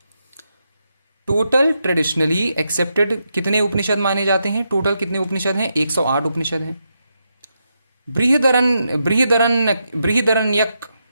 टोटल ट्रेडिशनली एक्सेप्टेड कितने उपनिषद माने जाते हैं, टोटल कितने उपनिषद हैं, 108 उपनिषद हैं। बृहदरण्यक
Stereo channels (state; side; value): inverted; both; correlation -0.83